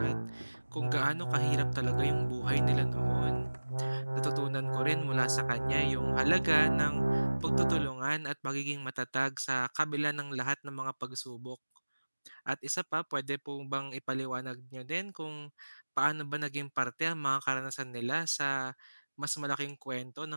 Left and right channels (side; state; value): both; inverted; correlation -1.00